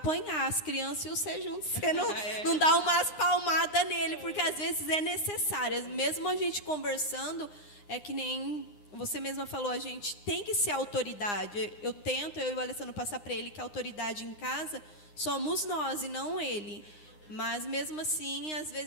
as crianças e você junto. Você não dá umas palmadas nele, porque às vezes é necessário. Mesmo a gente conversando, é que nem você mesma falou, a gente tem que ser autoridade. Eu e o Alessandro passar para ele que a autoridade em casa somos nós e não ele. Mas mesmo assim, às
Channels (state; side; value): late; right; 9.8 ms